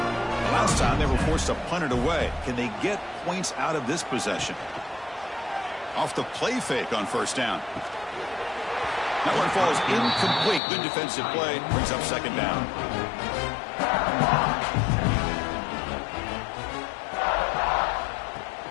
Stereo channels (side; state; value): right; drops out; at 10.6 s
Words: Last time they were forced to punt it away. Can they get points out of this possession? Off the play fake on 1st down. That one falls incomplete. Good defensive play. Brings up 2nd down.